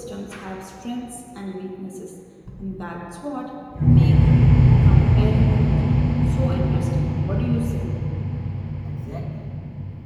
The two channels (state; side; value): identical; both; correlation 1.00